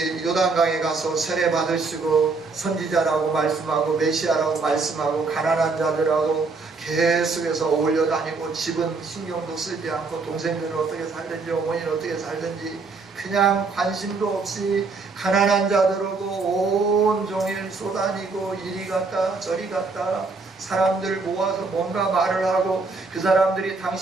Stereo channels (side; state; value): left; quieter; 4.1 dB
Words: 요단강에 가서 세례 받으시고 선지자라고 말씀하고 메시아라고 말씀하고 가난한 자들하고 계속해서 어울려 다니고 집은 신경도 쓰지 않고 동생들은 어떻게 살든지 어머니는 어떻게 살든지 그냥 관심도 없이 가난한 자들하고 온종일 쏘다니고 이리 갔다 저리 갔다 사람들 모아서 뭔가 말을 하고 그 사람들이